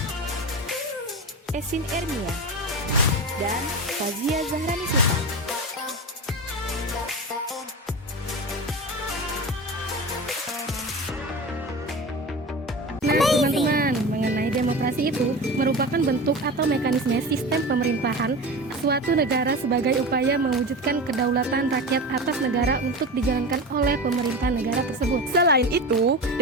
Esin Ermia, dan Fazia Zahrani Sultan. Nah, teman-teman, mengenai demokrasi itu merupakan bentuk atau mekanisme sistem pemerintahan suatu negara sebagai upaya mewujudkan kedaulatan rakyat atas negara untuk dijalankan oleh pemerintah negara tersebut. Selain itu,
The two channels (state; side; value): normal; both; correlation 0.28